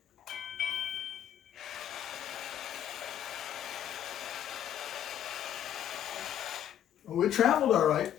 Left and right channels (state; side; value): quieter; right; 10.4 dB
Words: Well, it traveled all right,